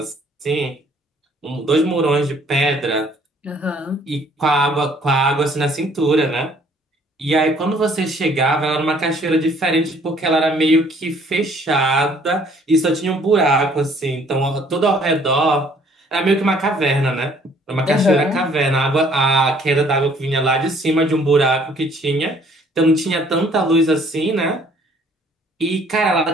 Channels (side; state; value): both; normal; correlation 0.60